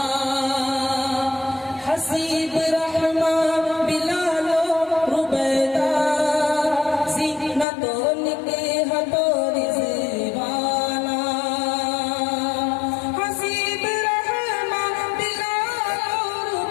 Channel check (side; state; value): right; drops out; at 7.7 s